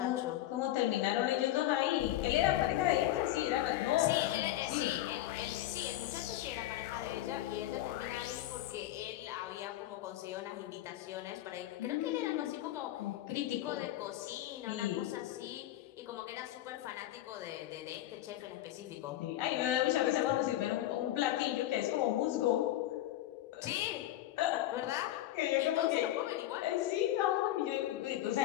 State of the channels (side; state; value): right; quieter; 14.0 dB